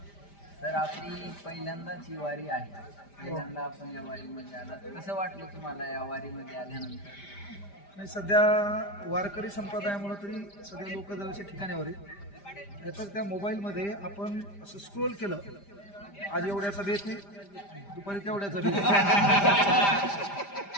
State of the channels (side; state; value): right; late; 5.0 ms